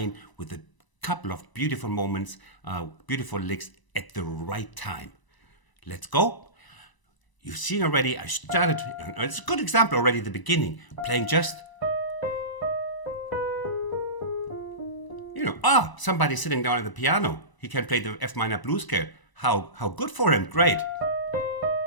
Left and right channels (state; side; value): late; right; 1.0 ms